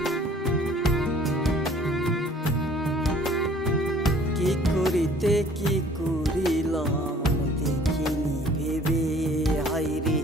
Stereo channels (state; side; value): normal; both; correlation 0.55